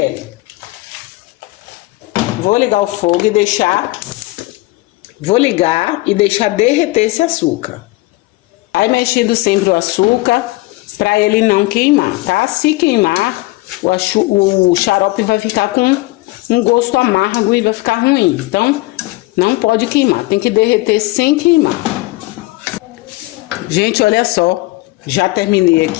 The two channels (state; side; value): quieter; right; 21.5 dB